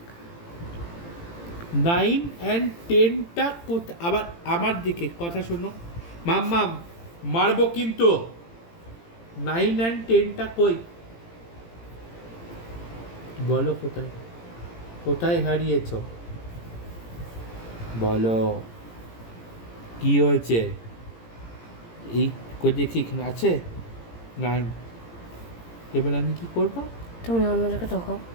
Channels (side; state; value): right; late; 18 ms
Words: 9 and 10টা আবার আমার দিকে কথা শোনো মাম্মাম, মারবো কিন্তু। 9 and 10টা কই? বলো কোথায়, কোথায় হারিয়েছো? বলো কি হয়েছে? এই কই দেখি, এখানে আছে 9। এবার আমি কি করব? তুমি অন্য জায়গায় দেখো।